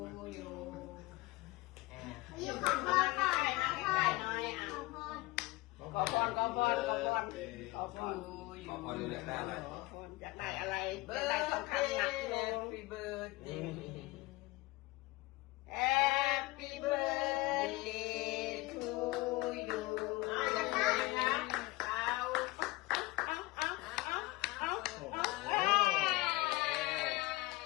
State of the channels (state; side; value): quieter; right; 21.2 dB